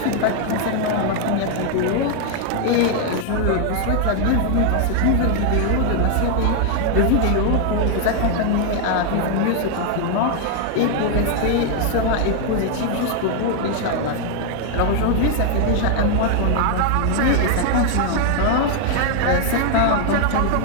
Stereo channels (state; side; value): different; both; correlation 0.00